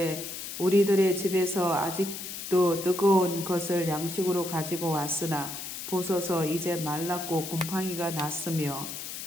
우리들의 집에서 아직도 뜨거운 것을 양식으로 가지고 왔으나 보소서 이제 말랐고 곰팡이가 났으며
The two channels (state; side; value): noise; left; hiss, 8 dB below the sound